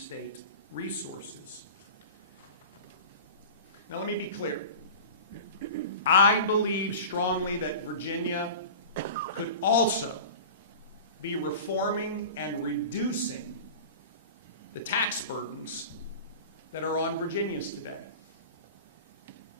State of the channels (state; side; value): inverted; both; correlation -0.35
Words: resources. Now let me be clear. I believe strongly that Virginia could also be reforming and reducing the tax burdens that are on Virginians today.